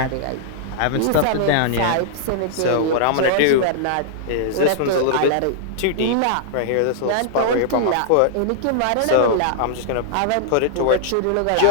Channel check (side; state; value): both; different; correlation -0.01